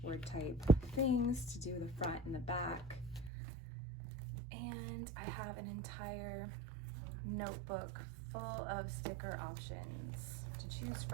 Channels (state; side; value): drops out; left; at 3.3 s